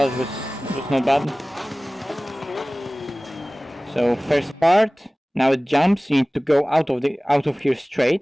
it was not bad. So first part, now it jumps, you need to go out of here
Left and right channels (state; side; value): normal; both; correlation 0.98